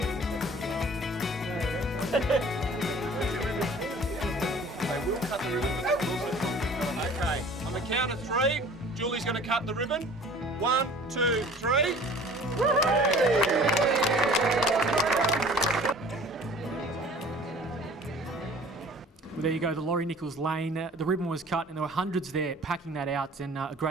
They will cut the ribbon, but they will also cut. Okay, on the count of three, Julie's going to cut the ribbon. 1, 2, 3. Well, there you go, the Laurie Nichols lane. The ribbon was cut and there were hundreds there packing that out, and a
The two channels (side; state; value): both; normal; correlation 0.48